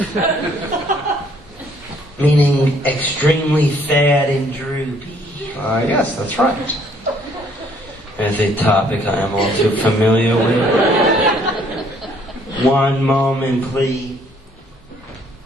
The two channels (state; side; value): normal; both; correlation 0.63